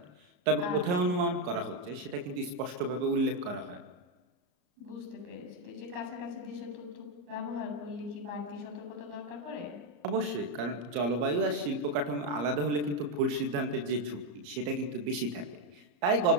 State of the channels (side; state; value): left; late; 34 ms